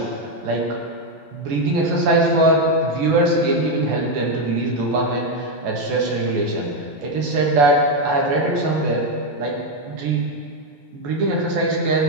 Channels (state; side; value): late; left; 14 ms